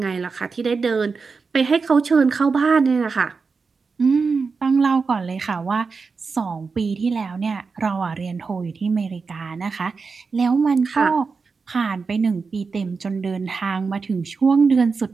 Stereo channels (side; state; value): left; quieter; 4.8 dB